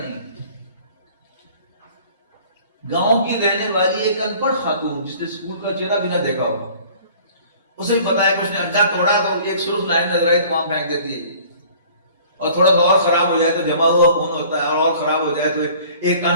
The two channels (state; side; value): inverted; both; correlation -0.51